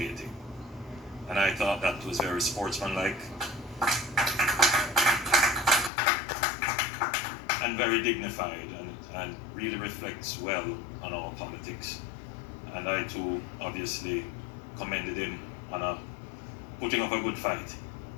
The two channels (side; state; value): right; drops out; at 5.9 s